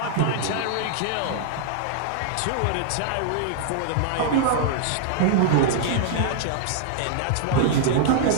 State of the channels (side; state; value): both; different; correlation -0.01